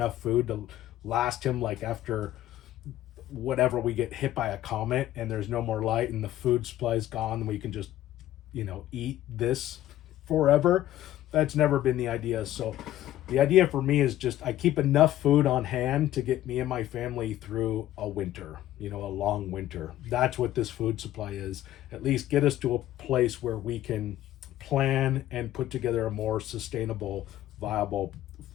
food to last him, like after whatever, we get hit by a comet and there's no more light and the food supply is gone, and we can just eat this forever. That's never been the idea. So the idea for me is just I keep enough food on hand to get me and my family through a winter, a long winter. That's what this food supply is. At least get us to a place where we can plan and put together a more sustainable, viable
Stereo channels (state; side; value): quieter; right; 13.6 dB